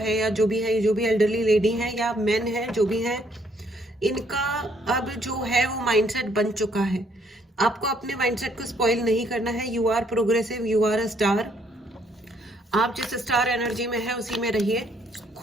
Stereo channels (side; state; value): both; normal; correlation 0.68